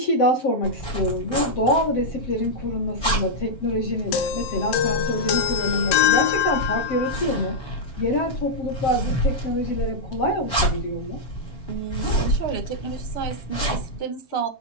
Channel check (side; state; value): right; late; 7.0 ms